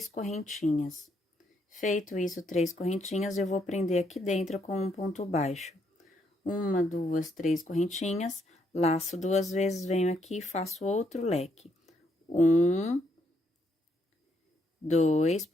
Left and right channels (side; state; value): both; normal; correlation 0.74